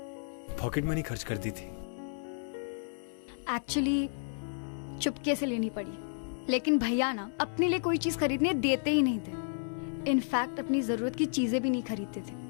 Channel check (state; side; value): silent; right; 56 dB below the other